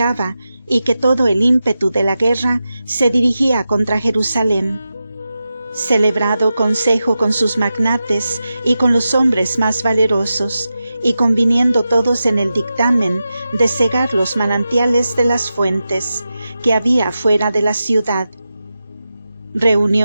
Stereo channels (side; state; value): both; inverted; correlation -0.91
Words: y que todo el ímpetu de la guerra se dirigía contra Jerusalén. Celebrado consejo con sus magnates y con los hombres más valerosos, y conviniendo todos en el dictamen de cegar los manantiales de las fuentes que había fuera de la ciudad,